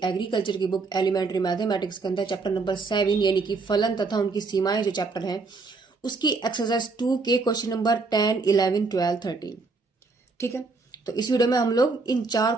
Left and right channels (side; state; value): left; quieter; 4.0 dB